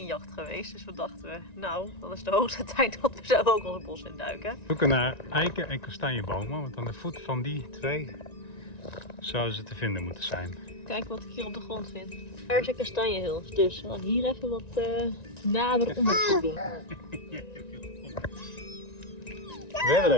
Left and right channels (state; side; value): late; right; 1.9 ms